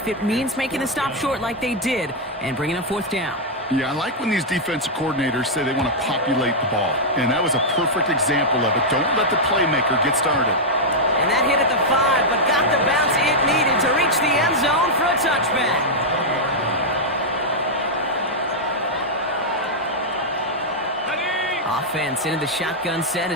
it means making the stop short like they did and bringing up 4th down. Yeah, I like when these defensive coordinators say they want to populate the ball, and that was a perfect example of it. Don't let the playmaker get started. And that hit at the 5, but got the bounce it needed to reach the end zone for a touchback. Offense into the shotgun set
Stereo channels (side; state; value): both; normal; correlation -0.04